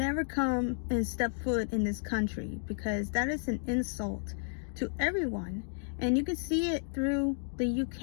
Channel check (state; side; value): silent; right; digital silence